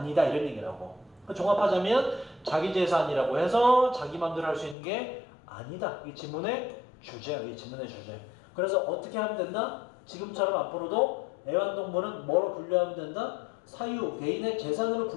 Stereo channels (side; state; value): right; drops out; at 4.8 s